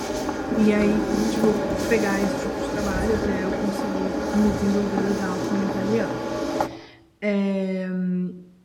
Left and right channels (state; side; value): identical; both; correlation 1.00